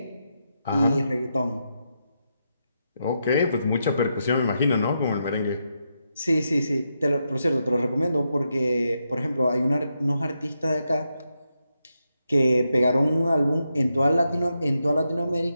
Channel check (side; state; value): both; inverted; correlation -0.84